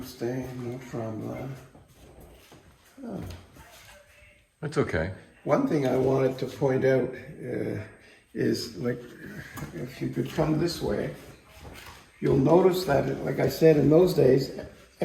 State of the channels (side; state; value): both; identical; correlation 1.00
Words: Mont-Tremblant. Oh. That's okay. One thing I wanted to point out is, like, if you could come this way, you'll notice that, like I said, in those days,